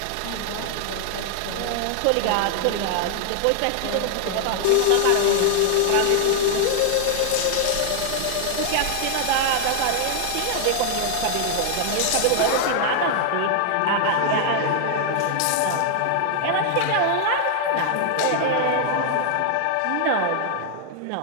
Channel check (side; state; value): both; different; correlation 0.00